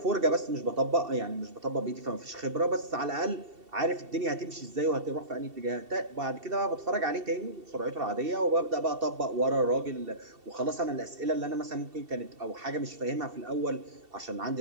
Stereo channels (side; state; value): left; late; 2.7 ms